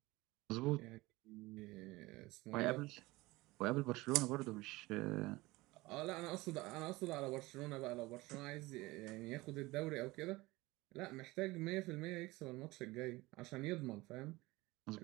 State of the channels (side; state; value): left; quieter; 20.8 dB